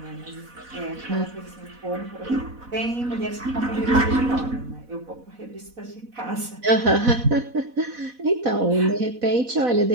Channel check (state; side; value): late; left; 4.1 ms